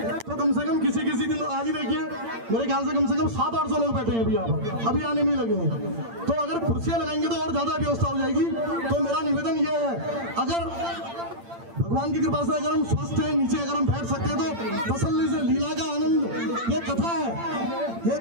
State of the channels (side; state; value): left; late; 8.8 ms